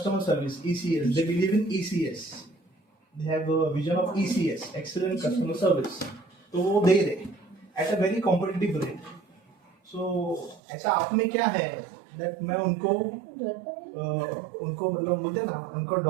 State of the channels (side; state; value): left; drops out; at 10.6 s